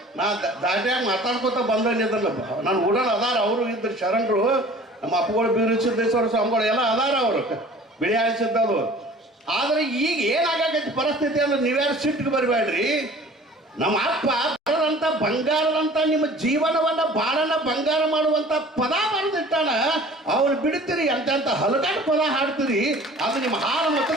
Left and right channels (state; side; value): normal; both; correlation 0.47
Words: ನಾ ದಾಟ್ಯಾಗ ಮಾತಾಡ್ಕೊತ ಬಂದಿದ್ದಲ್ಲ, ನಾನು ಉಡಲ್ ಅದಾರ, ಅವರು ಇದ್ರು ಶರಣರು, ನಮ್ಮ ಅಪ್ಪಗಳು ಬೀರು ಸಿದ್ದೇಶ್ವರ ಸ್ವಾಮಿಗಳು ಎಲ್ಲ ಅದಾರ, ಅವರು ಬಿಳಿ ಆಳಿಸಿದ್ದದು. ಆದ್ರೆ ಈಗ ಏನಾಗೈತಿ ಪರಿಸ್ಥಿತಿ ಅಂದ್ರೆ ನೀವ್ಯಾರು ಸಿಟ್ಟಿಗೆ ಬರಬೇಡ್ರಿ. ನಮ್ಮ ಅಪ್ಪ ಬರದಂತ ಬಂಗಾರದಂತ ನಿಮ್ಮ ಜೀವನವನ್ನ ಬಾಳನ್ನ ಬಂಗಾರ ಮಾಡುವಂತ ಪದ ಬರೆದಿಟ್ಟಾನ. ಅವ್ರು ಬಿಡ್ತೀರಿ, ಎಂತ ಹಲಗಾಟ ಪದ ಹಾಡ್ತೀರಿ, ಅದು ನಿಮ್ಮ ಹಾಲು